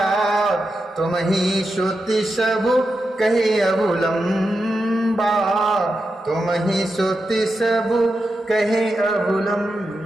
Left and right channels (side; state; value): both; normal; correlation 0.88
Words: तुम ही श्रुति सबु कहे अवलंबा, तुम ही श्रुति सबु कहे